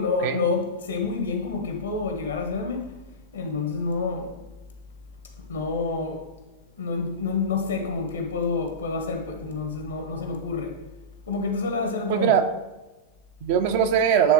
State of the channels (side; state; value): both; normal; correlation -0.16